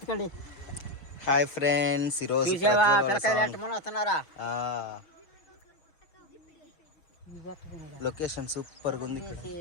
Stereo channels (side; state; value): right; late; 6.8 ms